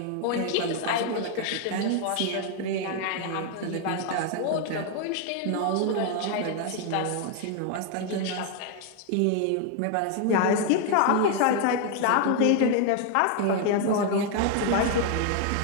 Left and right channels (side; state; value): both; different; correlation 0.01